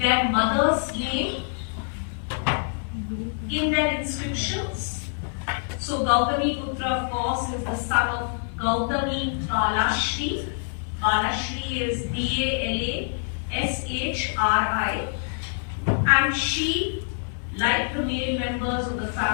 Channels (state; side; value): silent; right; digital silence